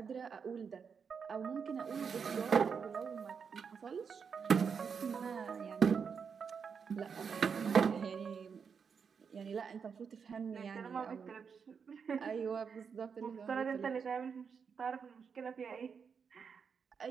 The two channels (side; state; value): left; quieter; 6.3 dB